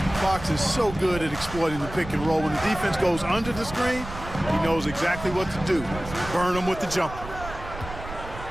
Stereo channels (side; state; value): right; noise; rumble, 11 dB below the sound